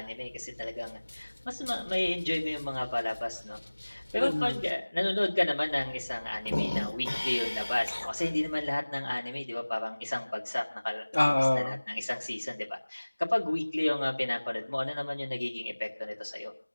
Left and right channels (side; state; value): both; inverted; correlation -1.00